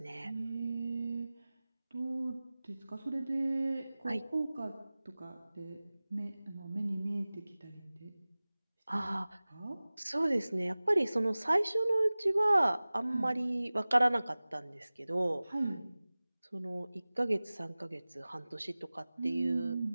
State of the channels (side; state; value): both; inverted; correlation -0.99